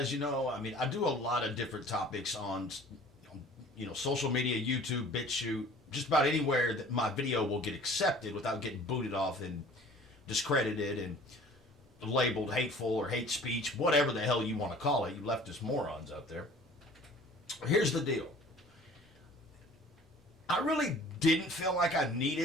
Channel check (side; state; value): both; normal; correlation 0.48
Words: I do a lot of different topics on, social media, YouTube, BitChute, just about anywhere that my video will get accepted without getting booted off and discredited and labeled hateful or hate speech, whatever the hell you want to call it, you leftist morons out there. Here's the deal. I really didn't feel like I